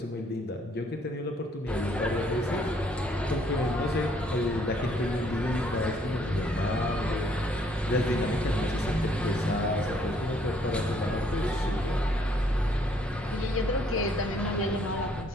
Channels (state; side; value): normal; both; correlation 0.66